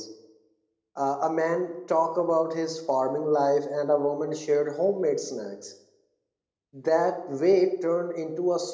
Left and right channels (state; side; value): identical; both; correlation 1.00